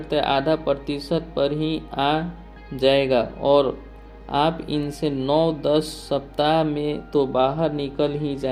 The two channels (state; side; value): identical; both; correlation 1.00